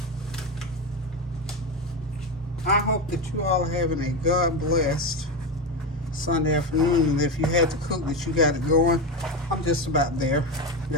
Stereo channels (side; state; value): both; normal; correlation 0.16